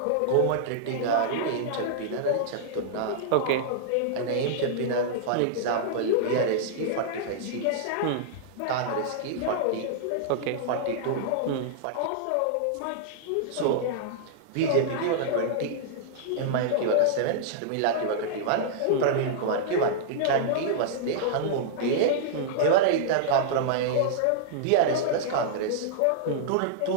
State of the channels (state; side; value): different; both; correlation -0.02